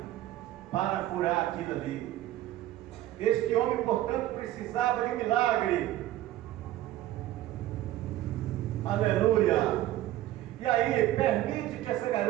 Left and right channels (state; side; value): quieter; left; 14.3 dB